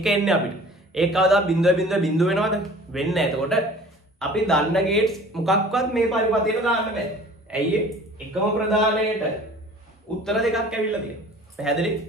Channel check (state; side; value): normal; both; correlation 0.46